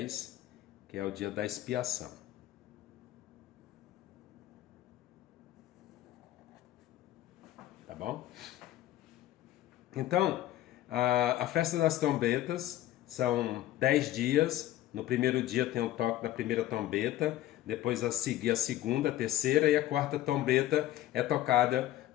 que é o dia da expiação. Tá bom? Então, a festa das trombetas são 10 dias. No primeiro dia tem o toque da primeira trombeta, depois a seguir a segunda, a terceira e a quarta trombeta é tocada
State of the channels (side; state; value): right; quieter; 14.2 dB